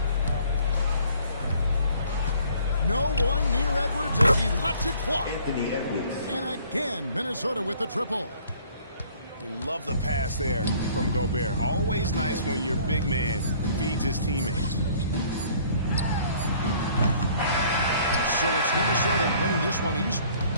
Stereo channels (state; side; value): inverted; both; correlation -0.56